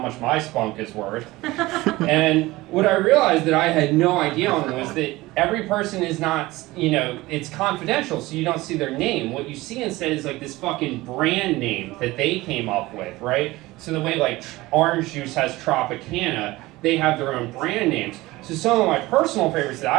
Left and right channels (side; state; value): left; quieter; 19.5 dB